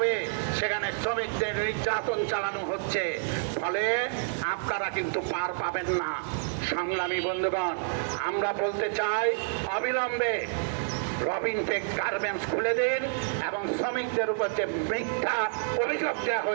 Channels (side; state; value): left; silent; digital silence